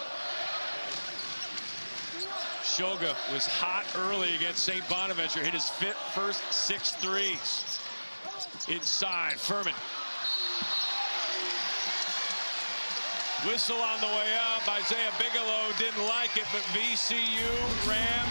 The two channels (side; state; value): both; inverted; correlation -1.00